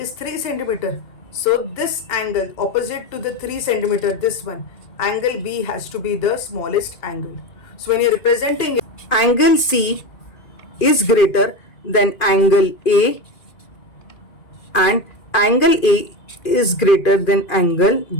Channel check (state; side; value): late; right; 2.5 ms